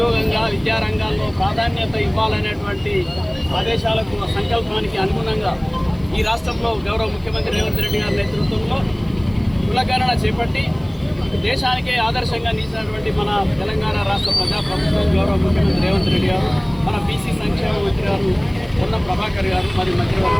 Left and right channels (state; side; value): noise; left; hiss, 30 dB below the sound